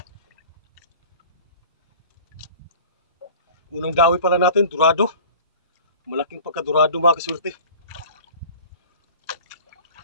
Unang dawi pala natin, durado. Malaking pagkadurado mga kasurte.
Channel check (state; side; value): inverted; both; correlation -0.43